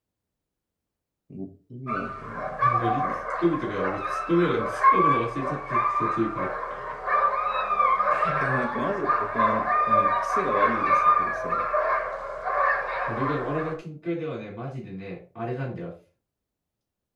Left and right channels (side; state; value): both; identical; correlation 1.00